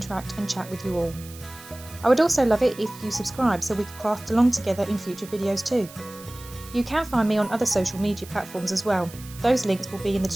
and chat with you all. I would also love it if you subscribe so we could craft along together in future videos too. You can find me on other social media platforms as well. Those links will be in the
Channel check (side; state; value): right; noise; hiss, 18 dB below the sound